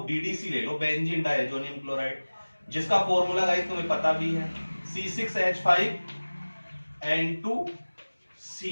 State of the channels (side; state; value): both; inverted; correlation -1.00